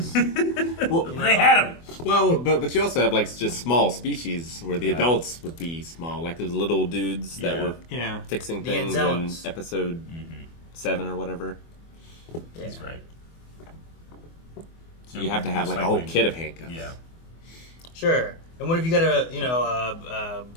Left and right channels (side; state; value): right; late; 24 ms